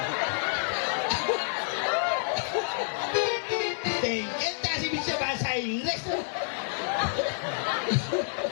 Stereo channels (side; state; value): right; silent; 59 dB below the other